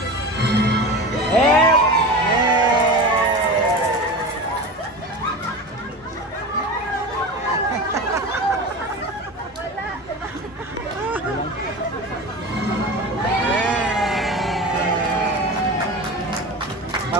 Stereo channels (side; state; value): both; normal; correlation 0.29